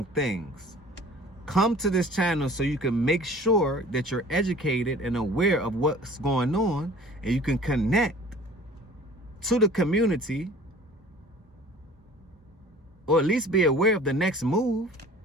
things. come to this channel so you can make sure that you're educated and aware of what's going on, and you can connect to the community, or at least be aware of the next move,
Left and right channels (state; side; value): normal; both; correlation 0.47